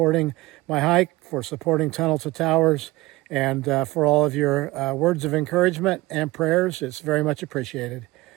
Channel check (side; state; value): left; quieter; 20.2 dB